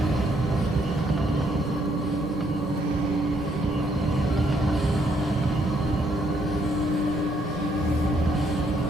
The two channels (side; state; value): both; normal; correlation 0.71